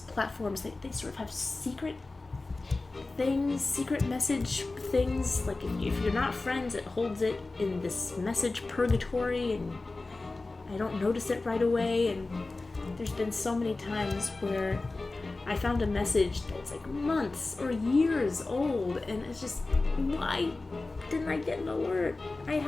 they sort of have secret things, secret message things. Like if you're not friends, it holds it in this message purgatory, and I don't notice it right away. And there's been so many times where I found a message that's like months or years old, and it's just, why didn't I get an alert? I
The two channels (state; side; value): quieter; right; 3.3 dB